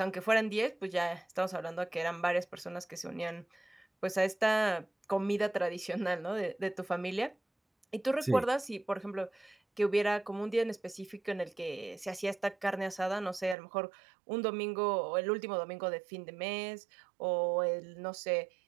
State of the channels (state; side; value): drops out; left; at 13.6 s